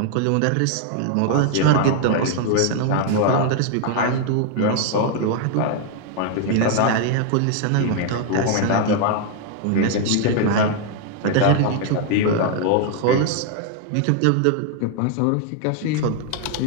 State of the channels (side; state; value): both; different; correlation 0.00